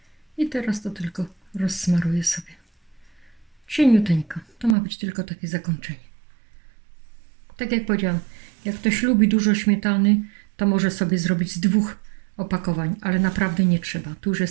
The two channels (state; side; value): drops out; left; at 4.8 s